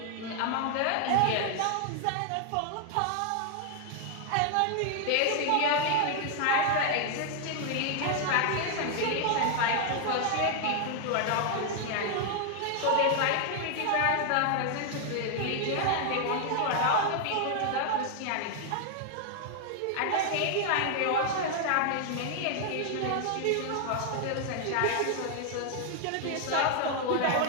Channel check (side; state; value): both; different; correlation 0.00